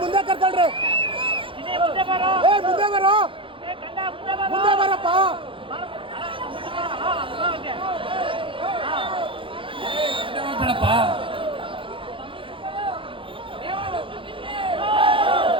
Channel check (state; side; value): late; left; 0.25 ms